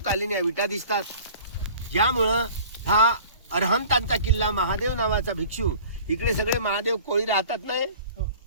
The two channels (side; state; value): both; inverted; correlation -0.45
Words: या विटा दिसतात. ज्यामुळं हा अरहंतांचा किल्ला महादेव नावाचा भिक्षू, इकडे सगळे महादेव कोळी राहतात नाही,